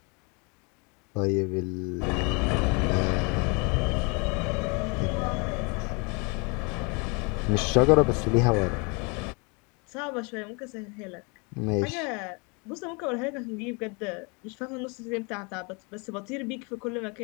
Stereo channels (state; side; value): quieter; right; 31.7 dB